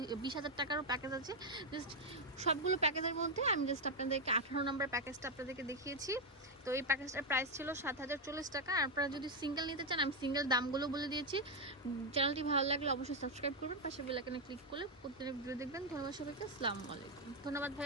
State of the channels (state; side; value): normal; both; correlation 0.04